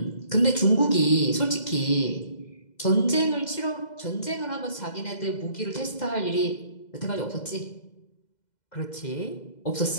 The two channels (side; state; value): right; late; 2.0 ms